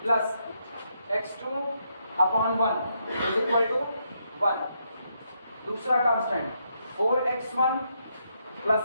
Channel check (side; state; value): both; inverted; correlation -0.78